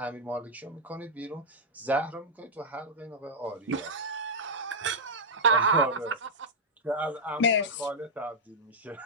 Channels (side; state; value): both; normal; correlation -0.05